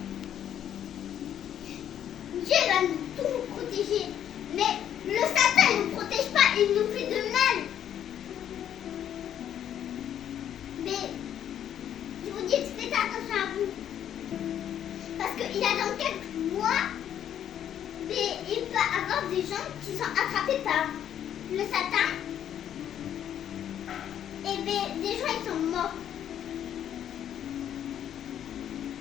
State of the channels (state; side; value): quieter; right; 10.1 dB